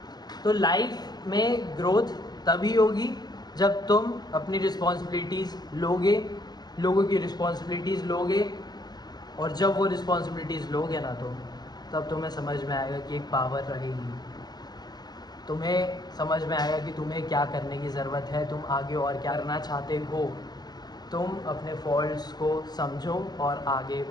तो लाइफ में ग्रोथ तभी होगी जब तुम अपनी रिस्पॉन्सिबिलिटीज़ लोगे, लोगों की रिस्पॉन्सिबिलिटीज़ लोगे, और जब वो रिस्पॉन्सिबिलिटीज़ लोगे ना तो तब तुम्हें समझ में आएगा कि एक पावर रहेगी, तुम्हें समझ में आएगा कि तुम्हें क्या करने की ज़रूरत है, तुम आगे और क्या करना चाहते हो। तुम अपने फॉल्ट्स को समझो और आगे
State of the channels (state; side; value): late; right; 0.20 ms